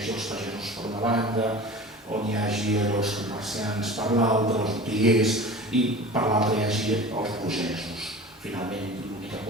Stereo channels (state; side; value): normal; both; correlation 0.37